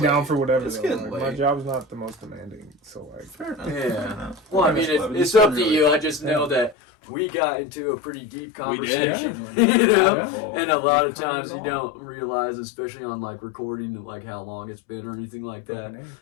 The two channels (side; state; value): right; drops out; at 6.8 s